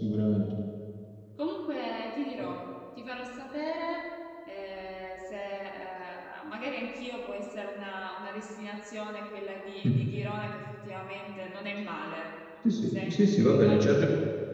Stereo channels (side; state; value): both; identical; correlation 1.00